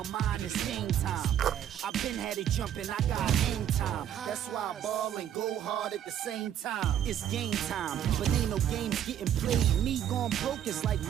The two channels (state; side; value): quieter; left; 10.3 dB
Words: mind, it's game time. I've been had it jumping, I got hang time. That's why I ball and go hard at the same time. It's game time, but ain't no games getting played. Me going broke is like